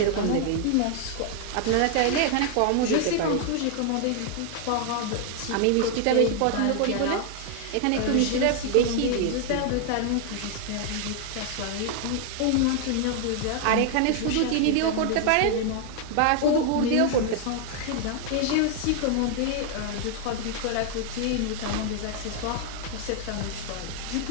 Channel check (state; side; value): different; both; correlation 0.00